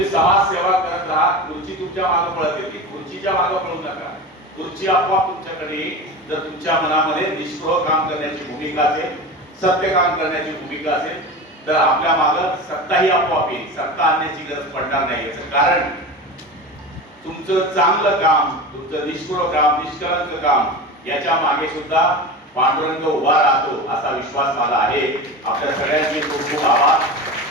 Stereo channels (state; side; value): normal; both; correlation 0.28